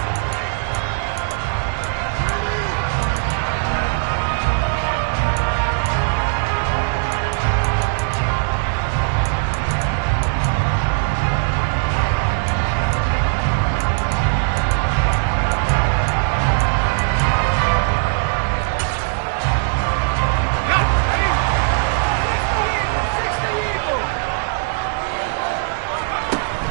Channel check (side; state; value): left; silent; digital silence